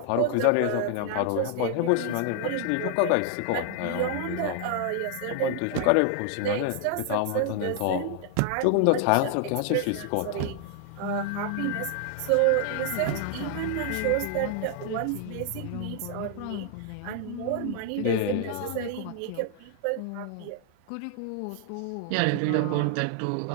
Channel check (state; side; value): different; both; correlation 0.00